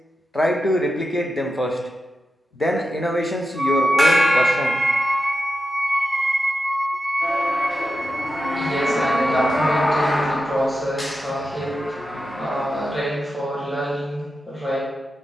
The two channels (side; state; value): both; normal; correlation 0.90